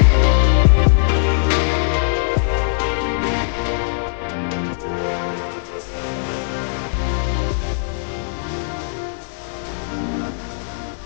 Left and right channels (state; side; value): silent; right; digital silence